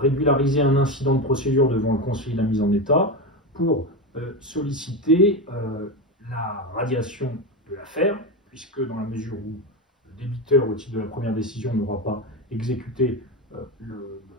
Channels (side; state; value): both; normal; correlation 0.17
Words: un incident de procédure devant le conseil de la mise en état pour solliciter la radiation de l'affaire, puisque dans la mesure où le débiteur, au titre de la première décision, n'aura pas exécuté